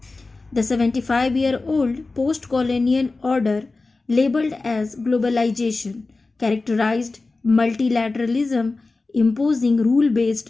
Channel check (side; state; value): right; quieter; 3.6 dB